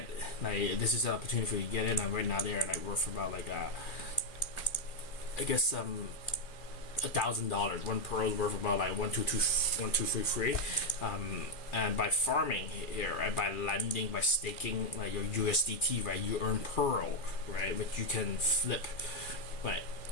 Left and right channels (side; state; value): right; late; 2.4 ms